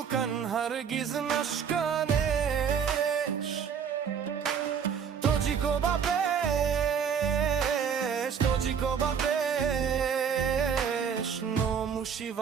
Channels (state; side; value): quieter; left; 7.2 dB